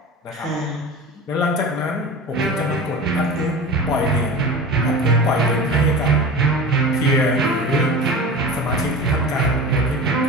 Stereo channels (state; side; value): normal; both; correlation 0.33